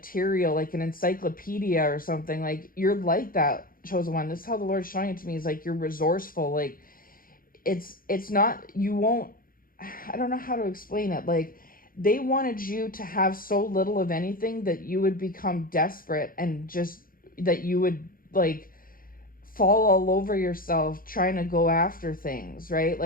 like an encyclopedia or something. Like, you're like that, chosen one. This is how the Lord's showing it to me, is like you're resourceful. Like, it's not, you won't, I don't know how to explain it. Like, they wanted you to have so little of anything that you would become desperate, and just that you would like fall all over yourself trying to go after things, right?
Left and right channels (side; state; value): right; late; 0.41 ms